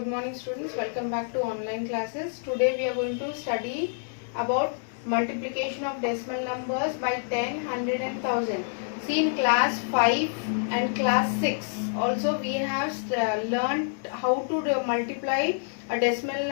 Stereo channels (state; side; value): silent; right; digital silence